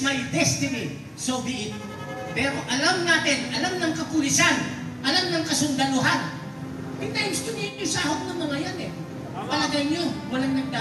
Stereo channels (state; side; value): identical; both; correlation 1.00